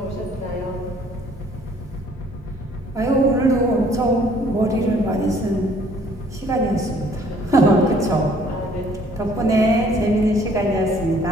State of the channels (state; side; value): normal; both; correlation 0.59